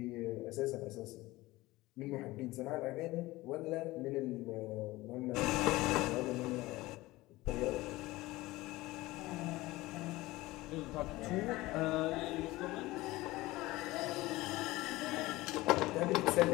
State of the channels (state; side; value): quieter; right; 19.2 dB